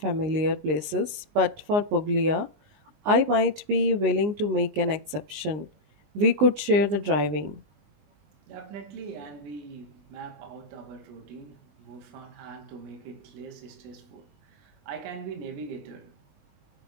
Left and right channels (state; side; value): late; left; 19 ms